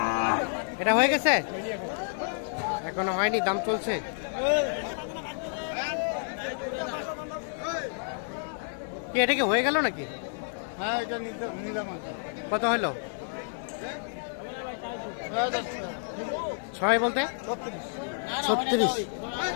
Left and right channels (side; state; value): right; silent; 58 dB below the other